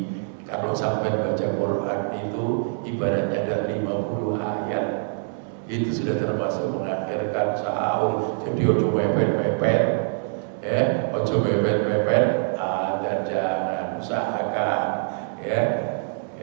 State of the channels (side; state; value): left; silent; digital silence